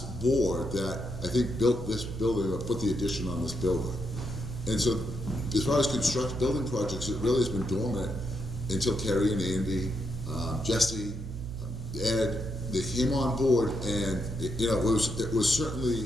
board that I think built this building or put the addition on this building. And so as far as building projects, it really has been dormant until Kerry and Andy, Jesse, Ed, they came on board, and it was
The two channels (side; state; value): right; noise; hum, 8 dB below the sound